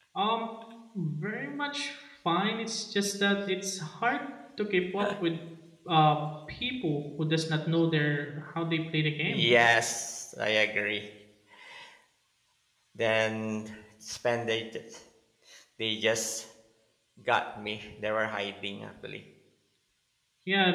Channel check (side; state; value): both; identical; correlation 1.00